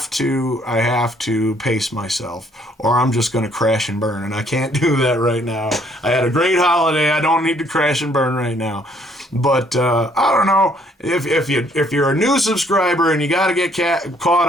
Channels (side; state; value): both; normal; correlation 0.65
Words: to pace myself, or I'm just going to crash and burn, and I can't do that right now. I had a great holiday. I don't need to crash and burn right now. But I don't know, if you're a new subscriber and you got to get caught